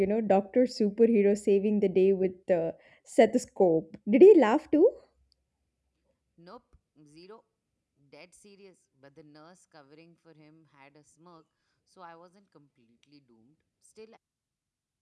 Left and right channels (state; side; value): identical; both; correlation 1.00